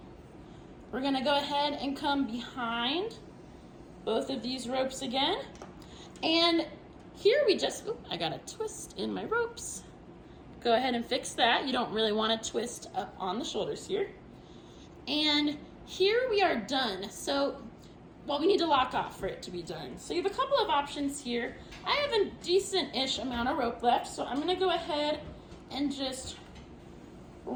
We're gonna go ahead and come behind both of these ropes again. And here we just, I got a twist in my ropes. Go ahead and fix that. You don't really want to twist up on the shoulders here. And here we are done. So, well, we need to lock off for it to be done. So you have a couple of options here. I have a decent-ish amount of rope left, so I'm gonna go ahead and just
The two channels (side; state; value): both; identical; correlation 1.00